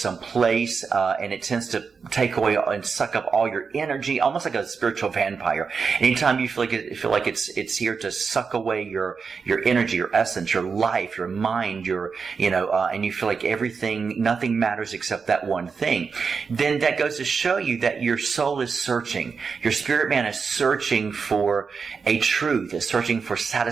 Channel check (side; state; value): left; quieter; 5.4 dB